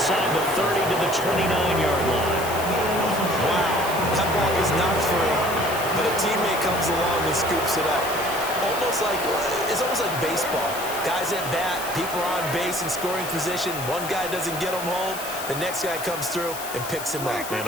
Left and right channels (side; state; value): left; noise; hiss, 10 dB below the sound